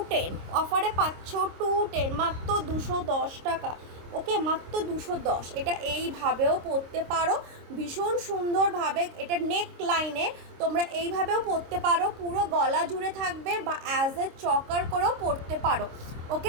অফারে পাচ্ছ 210, মাত্র 210 টাকা। ওকে, মাত্র 210। এটা এইভাবেও পরতে পারো ভীষণ সুন্দরভাবে, এটা নেক লাইনে তোমরা এইভাবেও পরতে পারো, পুরো গলা জুড়ে থাকবে, বা অ্যাজ এ চকার করেও পরতে পারো।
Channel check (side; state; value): left; late; 26 ms